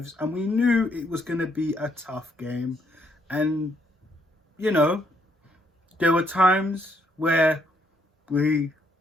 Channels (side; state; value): both; normal; correlation 0.71